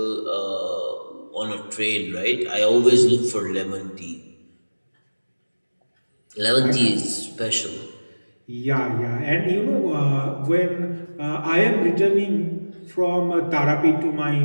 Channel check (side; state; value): both; inverted; correlation -1.00